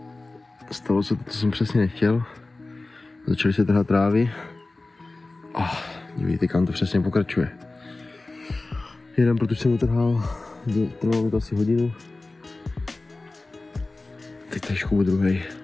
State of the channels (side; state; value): right; quieter; 3.2 dB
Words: Stalo se to, co jsem přesně nechtěl. Začaly se trhat trávy. Vidíte, kam to přesně pokračuje. Jeden, protože jsem utrhal, trvalo mi to asi hodinu. Teď tady škoubu druhej.